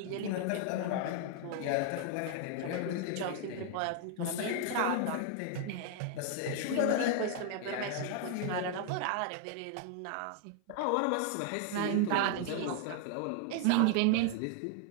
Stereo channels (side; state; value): both; different; correlation 0.00